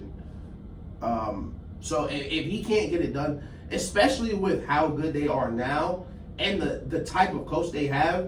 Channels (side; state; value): both; identical; correlation 1.00